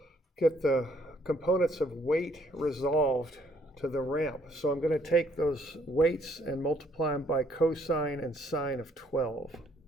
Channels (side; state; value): both; normal; correlation 0.66